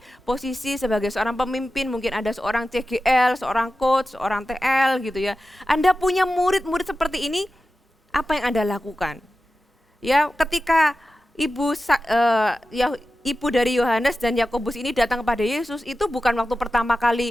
posisi sebagai seorang pemimpin, mungkin ada seorang CGL, seorang coach, seorang TL gitu ya. Anda punya murid-murid seperti ini, apa yang Anda lakukan? Ya, ketika ibu dari Yohanes dan Yakobus ini datang kepada Yesus, itu bukan waktu pertama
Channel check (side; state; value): both; normal; correlation 0.93